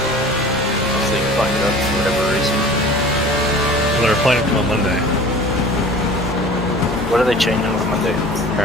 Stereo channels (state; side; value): normal; both; correlation 0.42